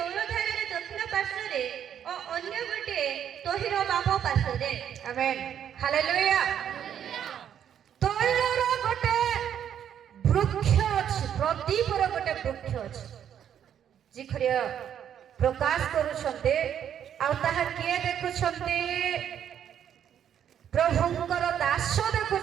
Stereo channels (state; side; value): quieter; left; 9.3 dB